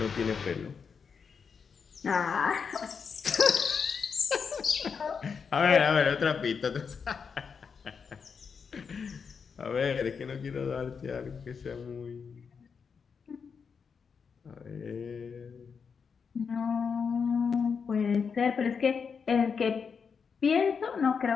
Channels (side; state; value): right; quieter; 6.0 dB